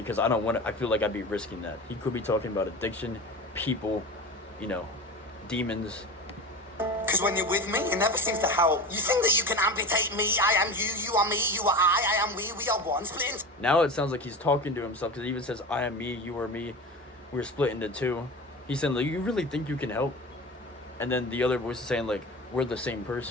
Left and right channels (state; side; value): normal; both; correlation 0.29